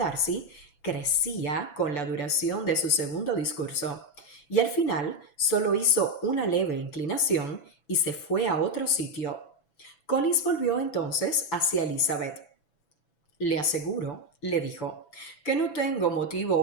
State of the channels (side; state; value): right; late; 6.0 ms